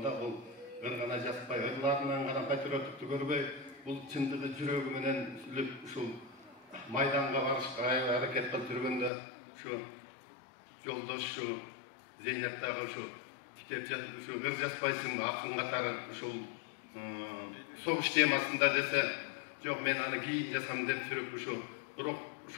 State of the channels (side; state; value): right; drops out; at 9.1 s